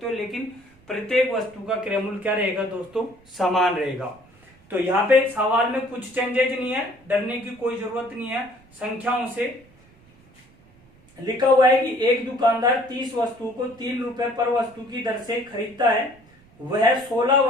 हो, लेकिन प्रत्येक वस्तु का क्रय मूल्य क्या रहेगा दोस्तों समान रहेगा। तो यहाँ पे सवाल में कुछ चेंजेज नहीं है, डरने की कोई जरूरत नहीं है। संख्याओं से लिखा हुआ है कि एक दुकानदार 30 वस्तुओं को 3 रुपए पर वस्तु की दर से खरीदता है, वह 16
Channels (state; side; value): noise; right; rumble, 28 dB below the sound